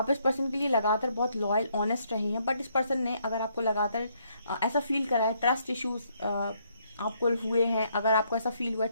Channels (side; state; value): both; inverted; correlation -0.71